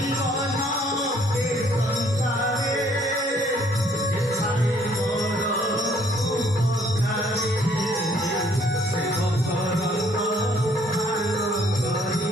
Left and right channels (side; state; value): both; normal; correlation 0.63